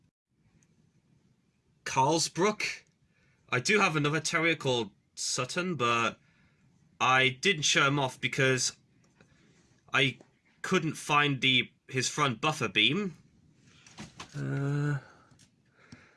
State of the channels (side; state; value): both; identical; correlation 1.00